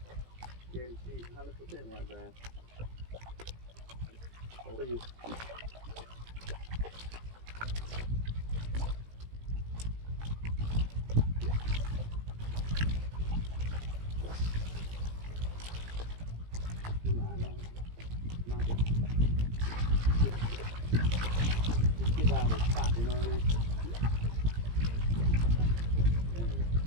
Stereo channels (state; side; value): late; left; 17 ms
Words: guarantee 100% white bass. For you. Get out of the spot, you know what I mean?